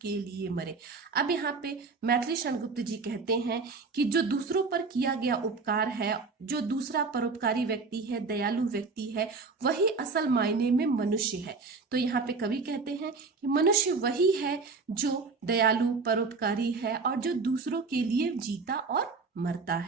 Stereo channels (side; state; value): left; quieter; 4.4 dB